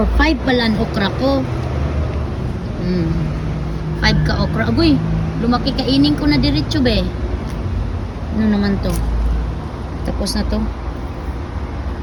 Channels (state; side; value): identical; both; correlation 1.00